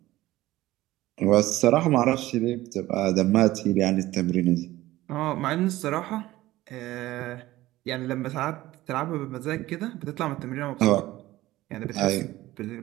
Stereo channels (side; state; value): left; quieter; 16.6 dB